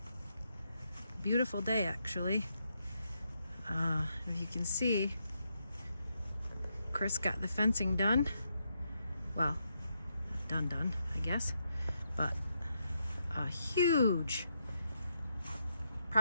Beautiful day, actually. If you can see, Chris got the fencing done. Well, done, I guess. But a huge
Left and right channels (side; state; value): both; inverted; correlation -0.80